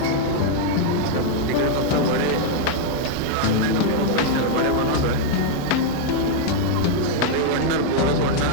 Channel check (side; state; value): both; different; correlation 0.00